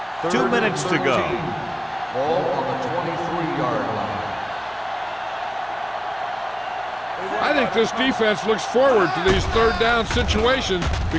2 minutes to go. Ball on the 23-yard line. I think this defense looks forward to these third down situations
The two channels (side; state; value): both; identical; correlation 1.00